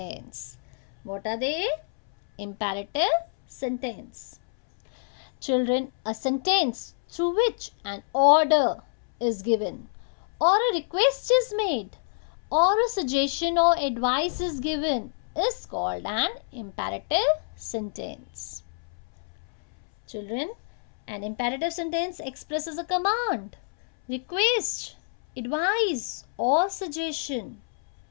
What are they? Imperative sentence. Children, a sentence through which an order is given, or a request is made, or a suggestion or advice is given is called an imperative sentence. Children, an imperative sentence expresses a command, request, advice or suggestion.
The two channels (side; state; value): right; silent; 60 dB below the other